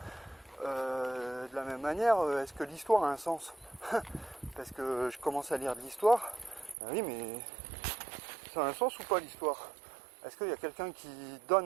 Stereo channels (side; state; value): left; drops out; at 6.8 s